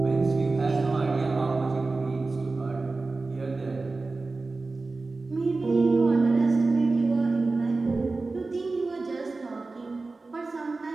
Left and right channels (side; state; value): left; quieter; 3.6 dB